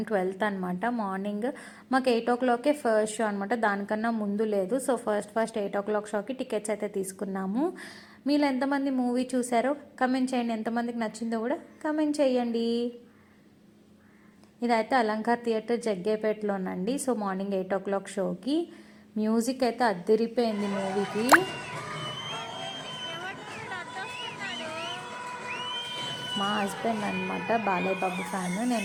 12th అనమాట. మార్నింగ్ మాకు 8 o'clockకే ఫస్ట్ షో అనమాట. దానికన్నా ముందు లేదు. సో ఫస్ట్ 8 o'clock షోకి టికెట్స్ అయితే తీసుకున్నాము. మీరు ఎంతమంది మూవీ చూసారో కమెంట్ చేయండి. ఎంతమందికి నచ్చిందో కూడా కమెంట్ చేయండి. ఇదైతే అలంకార్ థియేటర్ జగ్గేపేటలోనండి. సో మార్నింగ్ 8 o'clock షోకి మ్యూజిక్ అయితే అద్దరిపోయింది మూవీకి. మా హస్బెండ్ అనమాట బాలయ్య బాబు ఫ్యాన్,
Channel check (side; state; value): both; identical; correlation 1.00